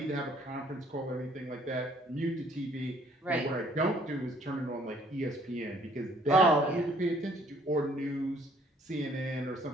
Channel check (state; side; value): normal; both; correlation 0.61